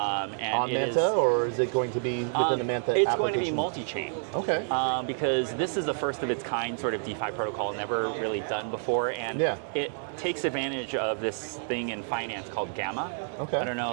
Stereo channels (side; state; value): left; silent; 59 dB below the other